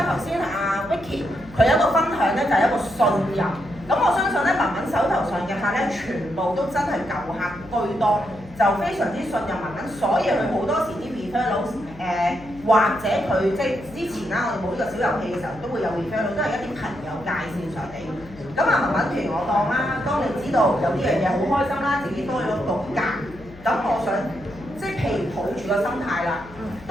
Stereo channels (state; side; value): noise; left; hum, 19 dB below the sound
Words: 頭先阿 Vicky 佢有一個分享咧，就係一個信任。咁我相信咧，文文手頭上嘅客咧，全部都真係舊客居多，就非常之信任文文，所以佢好多時啲 referral 或者佢即係之前啦，我哋冇呢個小遊戲嘅時候，都會有 referral，都係一啲朋友介紹上嚟。咁啊，文文譬如我當啦，當你知道有呢樣嘢好開心啦，自己多咗個價，咁我想即係譬如抱住個心態啦，